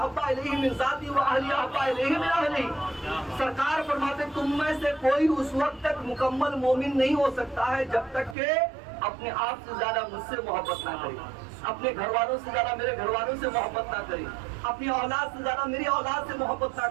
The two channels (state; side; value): drops out; left; at 8.3 s